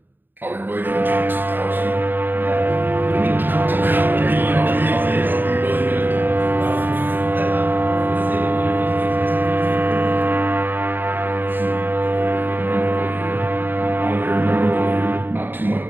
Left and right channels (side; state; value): left; late; 0.093 ms